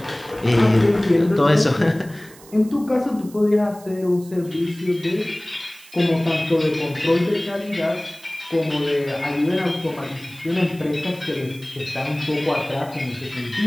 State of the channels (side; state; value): right; noise; hiss, 22 dB below the sound